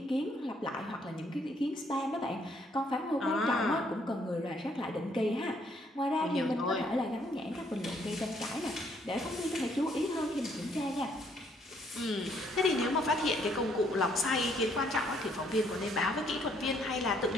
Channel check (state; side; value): normal; both; correlation 0.68